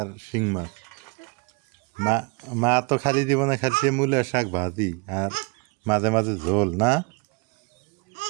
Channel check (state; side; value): quieter; left; 31.1 dB